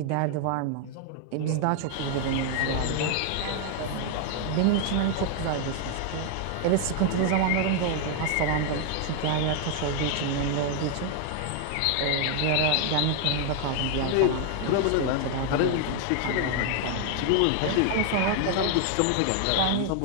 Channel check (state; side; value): different; both; correlation 0.00